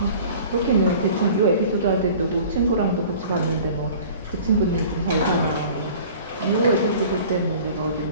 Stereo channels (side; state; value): both; inverted; correlation -0.45